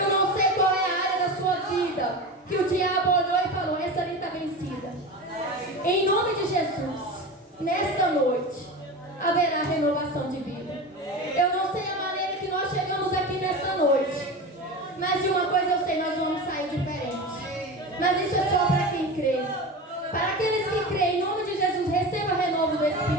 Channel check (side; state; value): both; normal; correlation 0.27